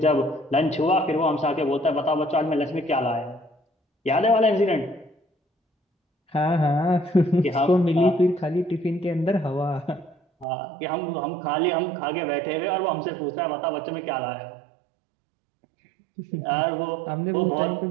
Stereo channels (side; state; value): left; drops out; at 10.5 s